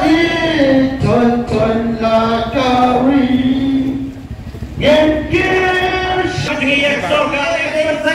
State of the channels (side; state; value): both; identical; correlation 1.00